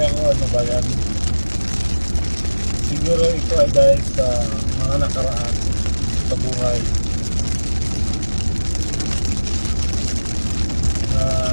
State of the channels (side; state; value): both; inverted; correlation -1.00